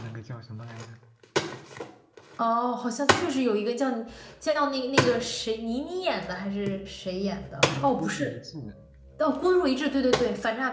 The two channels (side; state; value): both; identical; correlation 1.00